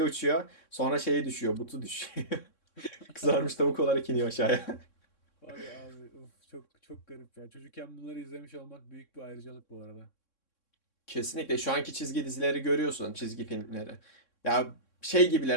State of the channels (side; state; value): right; late; 3.6 ms